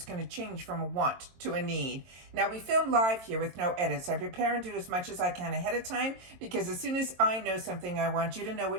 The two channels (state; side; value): late; left; 22 ms